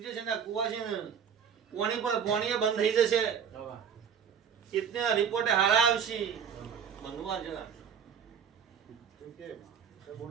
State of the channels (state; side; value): quieter; left; 7.5 dB